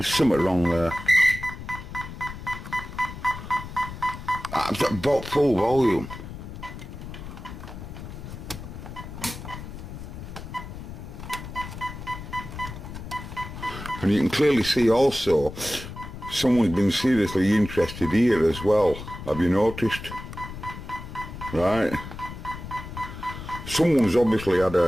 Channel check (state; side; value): noise; left; rumble, 11 dB below the sound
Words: something wrong there. I've got full volume. And you can clearly see also someone's been seriously interested here as well. Have you noticed? Right. Someone's obviously had